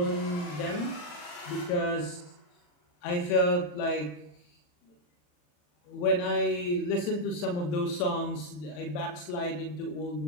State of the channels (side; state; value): right; late; 40 ms